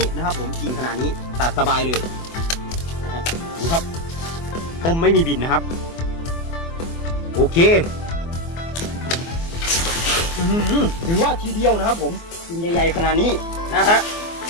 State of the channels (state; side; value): late; right; 24 ms